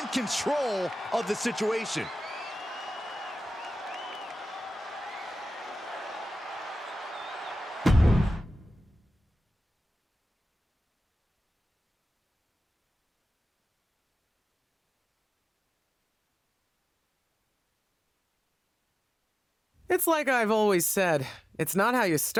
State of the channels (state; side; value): normal; both; correlation 0.96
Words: control of the situation. It's like I've always said, it's not how you